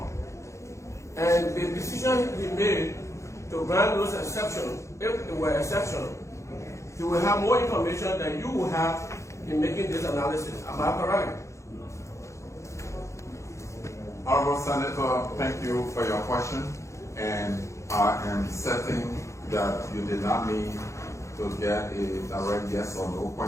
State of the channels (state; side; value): late; right; 0.14 ms